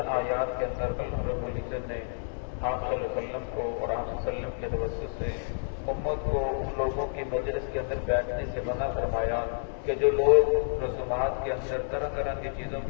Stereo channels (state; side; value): silent; right; 58 dB below the other